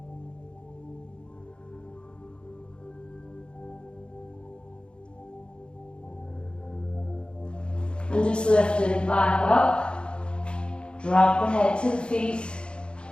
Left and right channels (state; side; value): late; right; 0.054 ms